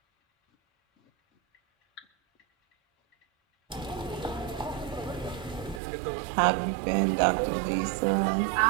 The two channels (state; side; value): drops out; left; at 5.8 s